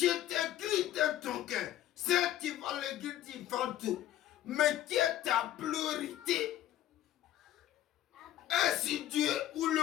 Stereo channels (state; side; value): quieter; right; 12.9 dB